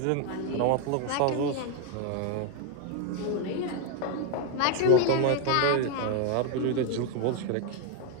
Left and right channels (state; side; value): different; both; correlation 0.01